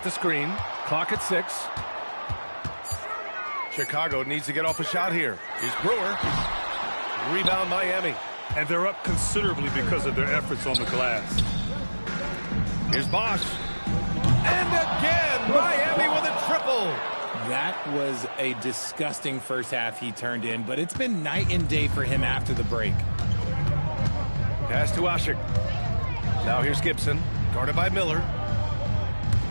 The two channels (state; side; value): inverted; both; correlation -1.00